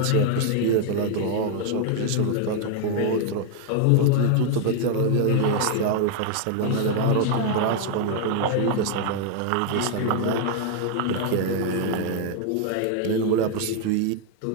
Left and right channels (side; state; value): both; different; correlation 0.00